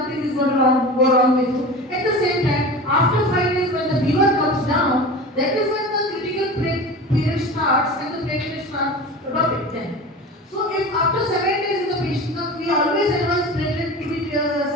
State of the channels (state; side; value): normal; both; correlation 0.33